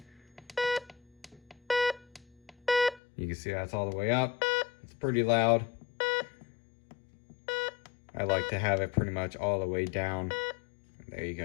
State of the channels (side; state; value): right; drops out; at 3.0 s